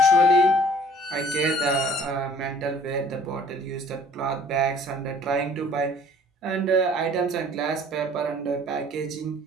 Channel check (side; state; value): both; normal; correlation 0.54